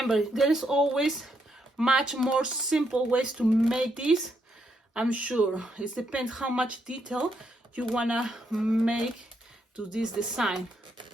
there is always much more simple ways to make this. I'm sure it depends how much detail you wanna make to this design.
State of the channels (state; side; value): normal; both; correlation 0.77